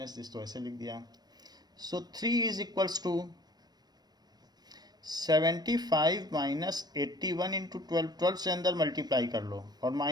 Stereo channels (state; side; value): late; left; 0.19 ms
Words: दिस, तो ऐसे लिख दिया. So 3 is equals to 75 minus 81 into 12. 12 से अंदर मल्टीप्लाई कर लो और